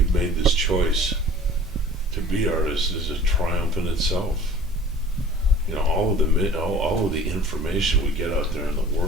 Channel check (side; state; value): both; normal; correlation 0.46